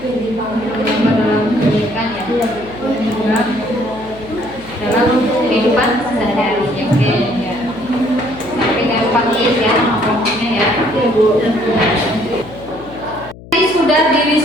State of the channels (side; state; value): left; noise; hum, 18 dB below the sound